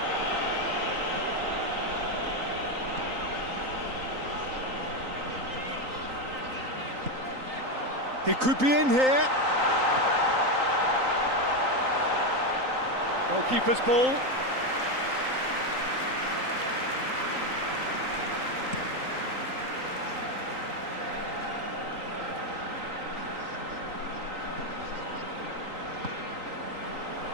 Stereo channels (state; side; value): late; left; 3.9 ms